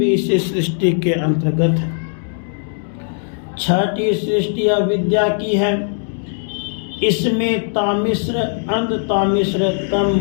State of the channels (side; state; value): right; silent; digital silence